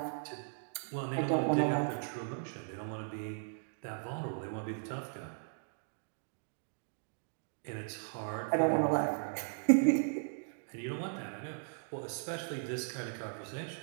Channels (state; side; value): silent; left; digital silence